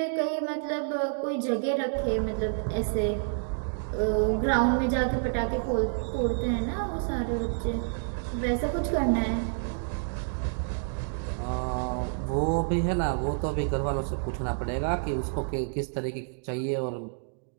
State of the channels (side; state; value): left; silent; digital silence